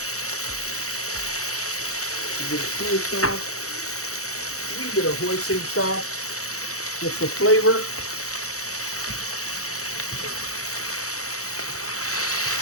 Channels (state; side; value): late; right; 0.65 ms